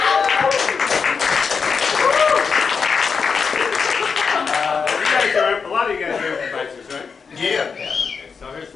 A lot of you guys are improvisers, right? Yeah. Okay, so here's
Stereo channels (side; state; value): right; quieter; 5.6 dB